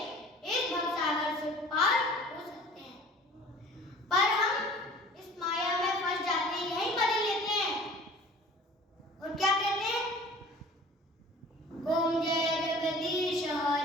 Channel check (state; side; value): normal; both; correlation 0.46